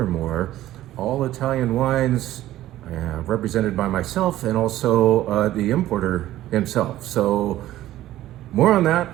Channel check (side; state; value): left; quieter; 14.3 dB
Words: All Italian wines represented by myself and also the importer himself. So more on that